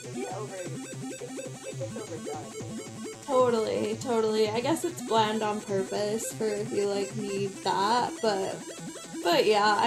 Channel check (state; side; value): identical; both; correlation 1.00